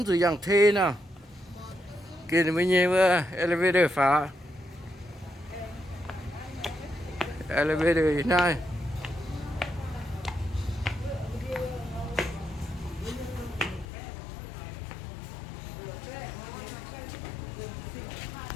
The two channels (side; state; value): right; drops out; at 13.9 s